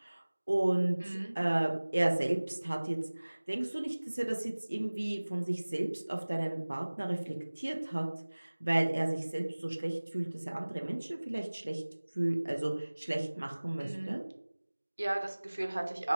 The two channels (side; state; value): both; inverted; correlation -1.00